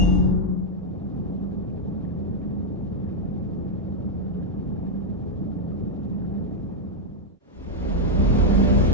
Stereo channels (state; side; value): normal; both; correlation -0.01